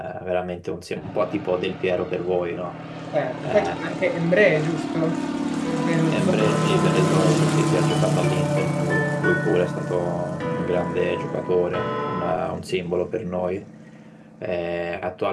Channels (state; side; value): identical; both; correlation 1.00